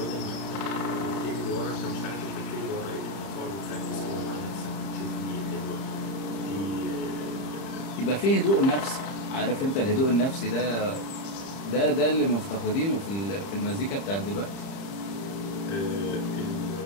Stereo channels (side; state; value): right; late; 31 ms